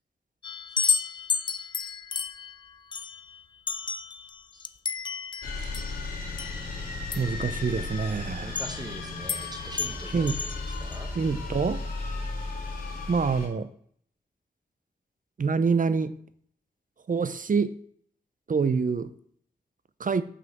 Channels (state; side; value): normal; both; correlation 0.54